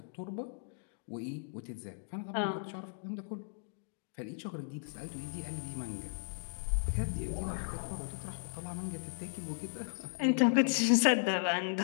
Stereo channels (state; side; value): silent; right; digital silence